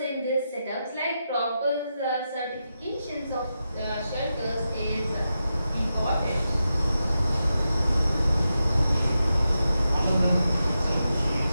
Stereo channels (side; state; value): both; inverted; correlation -0.88